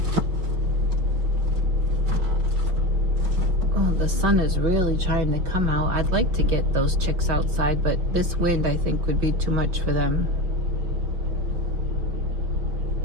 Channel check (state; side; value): late; left; 5.7 ms